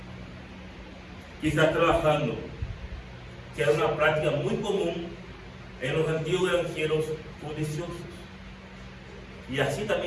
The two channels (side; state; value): both; identical; correlation 1.00